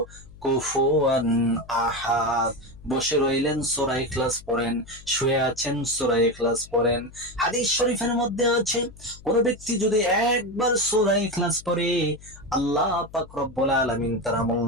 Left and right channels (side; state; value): left; noise; hum, 20 dB below the sound